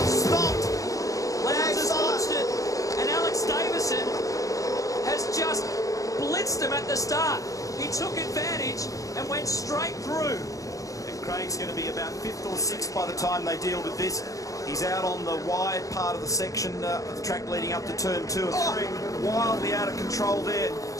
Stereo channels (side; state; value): right; late; 0.16 ms